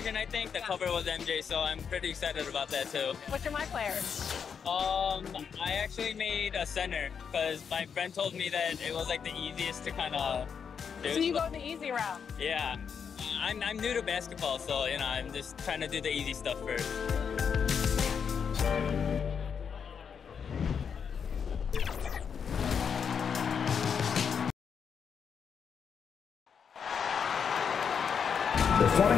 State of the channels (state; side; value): quieter; right; 6.8 dB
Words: I think, the cover was MJ, so I'm pretty excited about that too. What's your My Player? I actually made a center because my friend told me that it was like the easiest to kind of do. So you go the easy route? Yeah. I'm new to basketball, so you know, I'm just trying to do the easy stuff first. The